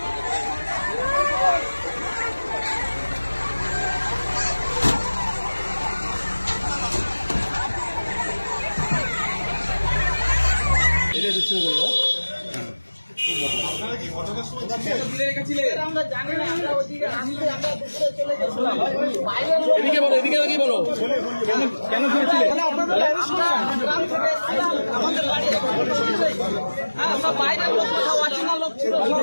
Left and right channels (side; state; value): both; inverted; correlation -1.00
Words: এটা দিচ্ছে বলো এদিকে বলো এদিকে লাগিয়ে বলো কেন